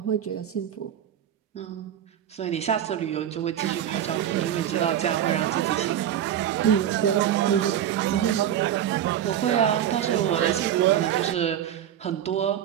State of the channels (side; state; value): left; quieter; 10.5 dB